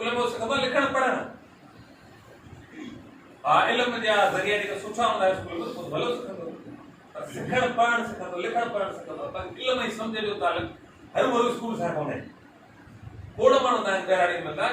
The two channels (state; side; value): identical; both; correlation 1.00